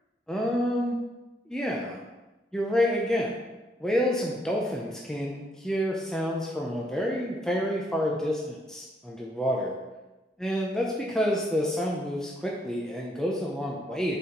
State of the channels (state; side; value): normal; both; correlation 0.72